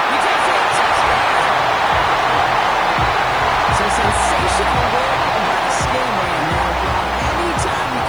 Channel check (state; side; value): noise; left; hiss, 27 dB below the sound